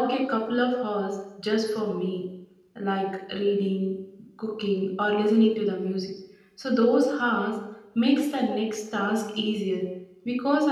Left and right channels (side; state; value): both; identical; correlation 1.00